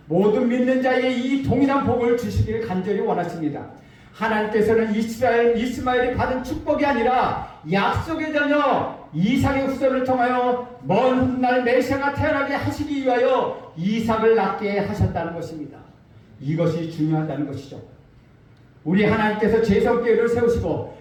모든 믿는 자에게 이 동일한 복을 주시기를 간절히 원하십니다. 하나님께서는 이스마엘이 받은 축복이 아니라 약속의 자녀 이삭의 후손을 통하여 먼 훗날 메시아가 태어나게 하시기 위하여 이삭을 낳게 하셨다는 것입니다. 이것이 중요하다는 것이죠. 우리 하나님께서 제성교회를 세우시고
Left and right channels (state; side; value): identical; both; correlation 1.00